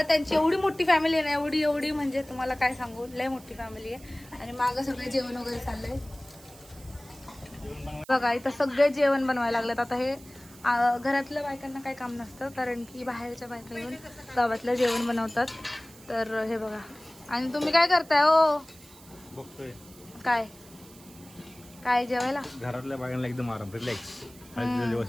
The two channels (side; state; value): right; noise; hiss, 22 dB below the sound